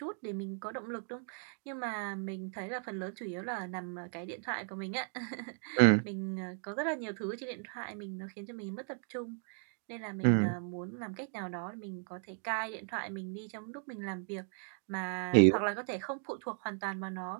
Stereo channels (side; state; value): left; silent; 54 dB below the other